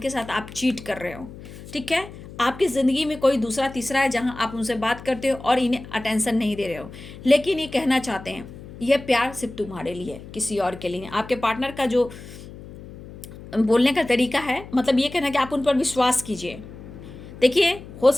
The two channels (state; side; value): noise; left; hum, 15 dB below the sound